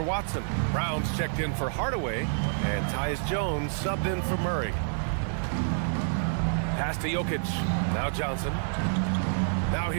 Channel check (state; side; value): silent; left; digital silence